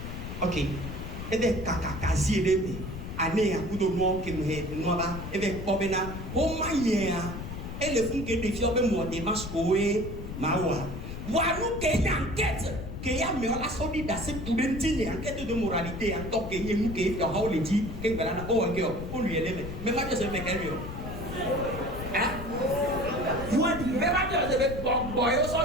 ok ebe kakakazi ebe ane ya kudo mo ke no ba ebe obena o manya e le fun ke défi obe mo de maskoe mawa waru ke enquête que ya me la solide c'est tout d'entine enquête de moralité en tant que yenu ke yo ha o le di ke ngala na o ngeo o lui ele me ma je se me ke yo hein mais ma je se boy o so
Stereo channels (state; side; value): noise; left; rumble, 8 dB below the sound